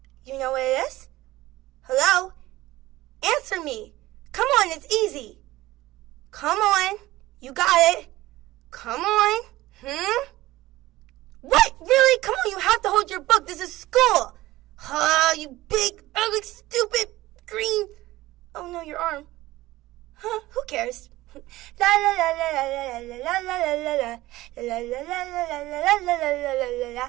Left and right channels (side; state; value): left; quieter; 17.5 dB